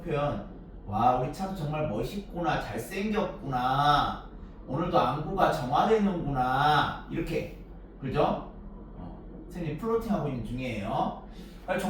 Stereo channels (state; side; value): identical; both; correlation 1.00